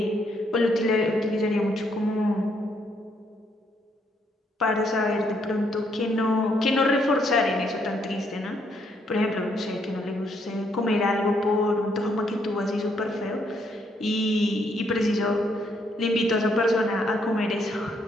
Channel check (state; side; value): normal; both; correlation 0.72